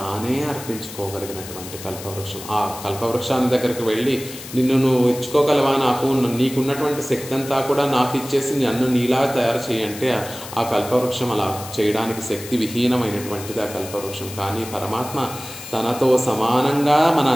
అర్పించుకోగలిగినటువంటి కల్పవృక్షం. ఆ కల్పవృక్షాన్ని దగ్గరికి వెళ్ళి నిన్ను నువ్వు ఇచ్చుకోగలవా, నీకున్నటువంటి శక్తి అంతా కూడా నాకు ఇచ్చేసి నన్ను నీలా తయారు చేయంటే ఆ కల్పవృక్షం అలా చేయడానికి శక్తి విహీనమైనటువంటిది ఆ కల్పవృక్షం. కానీ పరమాత్మ తనతో సమానంగా మన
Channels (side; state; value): left; noise; hiss, 13 dB below the sound